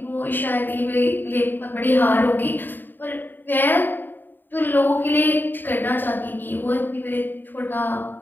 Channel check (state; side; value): late; right; 0.092 ms